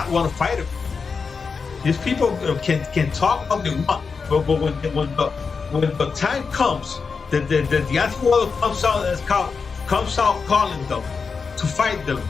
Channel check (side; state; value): right; quieter; 5.2 dB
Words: want to fight him. These people can talk all they want, but when the time comes, the Deontay Wilder comes out calling them to fight them,